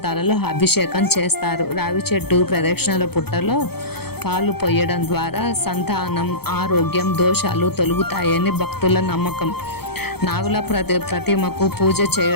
అభిషేకం చేస్తారు. రావి చెట్టు ప్రదక్షిణల పుట్టలో పాలు పొయ్యడం ద్వారా సంతానం, ఆరోగ్యం, దోషాలు తొలగుతాయని భక్తుల నమ్మకం. నాగుల ప్రతిమకు పూజ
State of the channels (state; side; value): late; right; 0.96 ms